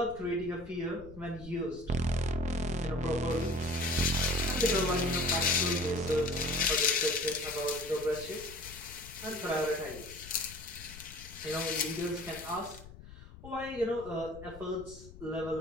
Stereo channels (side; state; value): left; noise; rumble, 16 dB below the sound